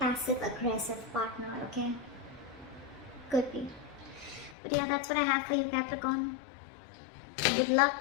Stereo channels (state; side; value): drops out; right; at 4.5 s